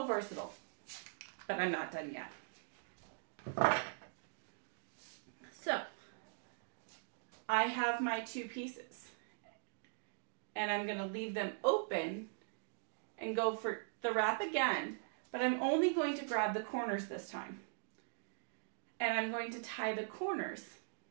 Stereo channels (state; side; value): silent; left; digital silence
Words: versatile, but I'm not done yet. So I have my two pieces and I'm going to leave them open and go for the wrap again, but I'm only going to grab the corners this time. And I'm going to tie the corners.